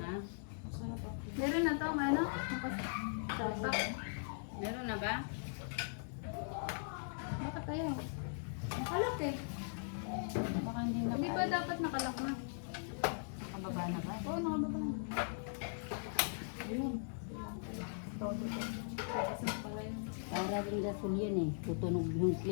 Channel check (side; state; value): right; silent; 51 dB below the other